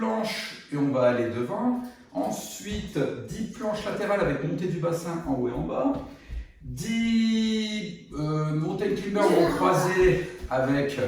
et on va aller devant. Ensuite 10 planches latérales avec montée du bassin en haut et en bas. 10 mountain climbers vont croiser avec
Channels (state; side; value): identical; both; correlation 1.00